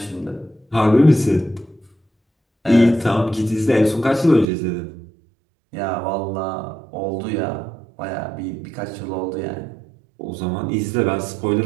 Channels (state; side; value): drops out; left; at 4.5 s